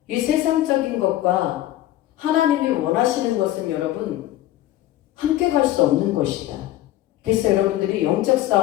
이 세상적인 것과 하나님이 원하시는 것은 여러분 함께 갈 수 없는 것이다. 그래서 여러분들이 영적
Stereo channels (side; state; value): right; quieter; 14.4 dB